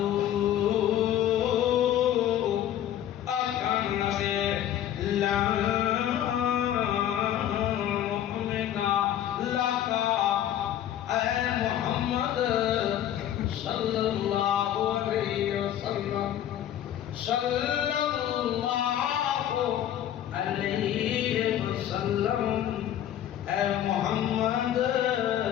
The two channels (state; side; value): quieter; right; 11.3 dB